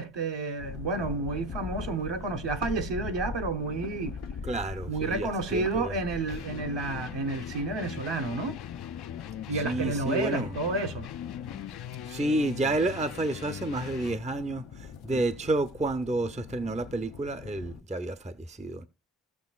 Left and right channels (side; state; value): both; normal; correlation 0.36